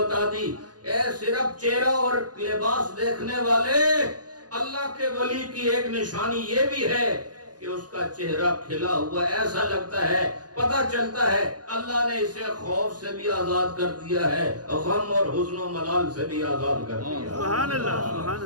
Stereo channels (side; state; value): left; late; 0.69 ms